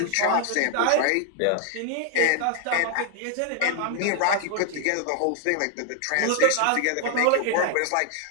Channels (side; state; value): both; different; correlation 0.00